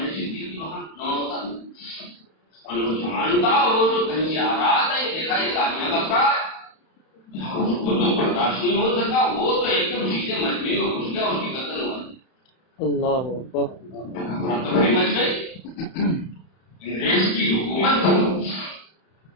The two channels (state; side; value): late; right; 31 ms